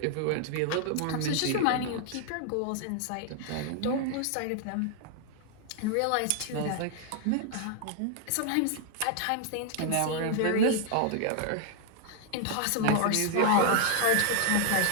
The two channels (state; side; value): different; both; correlation 0.00